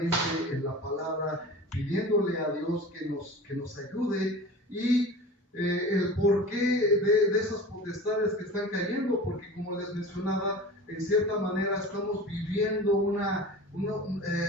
en la palabra, pidiéndole a Dios que nos ayude, y el porqué de esas potestades que están cayendo, porque como les mencionaba, en cierta manera estamos viviendo o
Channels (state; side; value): normal; both; correlation 0.36